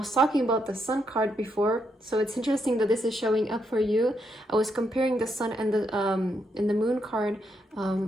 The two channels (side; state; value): both; normal; correlation 0.79